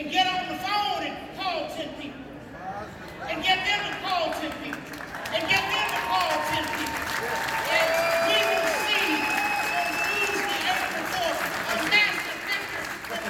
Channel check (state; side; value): identical; both; correlation 1.00